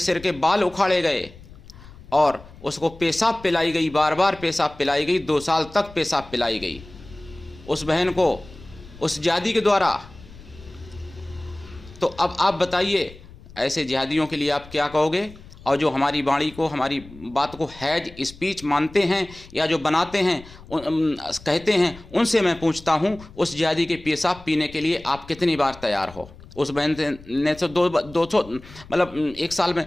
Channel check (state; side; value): noise; left; rumble, 19 dB below the sound